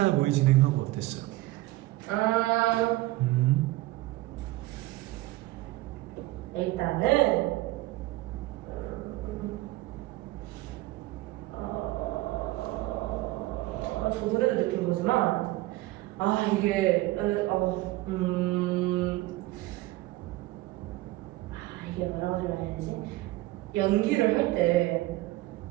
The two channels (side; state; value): left; quieter; 18.0 dB